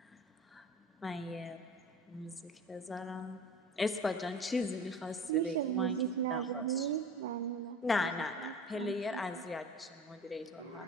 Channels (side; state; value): both; normal; correlation 0.38